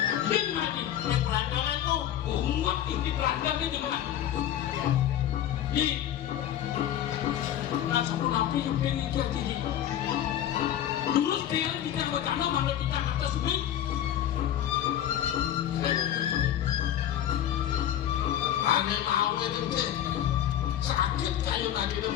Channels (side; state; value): right; quieter; 11.2 dB